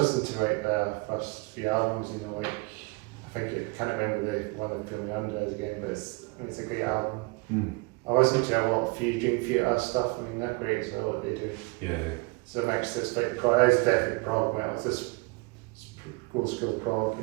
to like their first few albums, you know, like I can't remember the one that Film Under again, but it's a great album. I listen to a lot of Dream Theater stuff. I mean, they're great as well what they do. Yeah. So it makes this like it's definitely prog metal. It's just old school prog,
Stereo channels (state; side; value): quieter; left; 27.6 dB